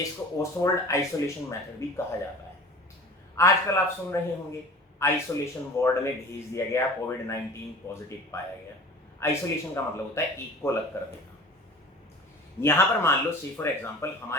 इसको ओसवाल्ड आइसोलेशन मेथड भी कहा जाता है। आजकल आप सुन रहे होंगे आइसोलेशन वार्ड में भेज दिया गया, कोविड-19 पॉजिटिव पाया गया। आइसोलेशन का मतलब होता है एक को अलग कर देना। यहाँ पर मान लो से फॉर एग्जांपल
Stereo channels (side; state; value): both; normal; correlation 0.41